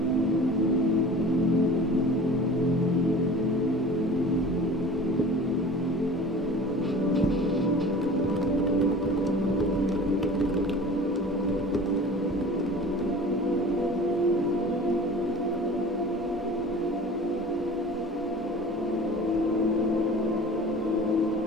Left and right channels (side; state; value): both; normal; correlation 0.41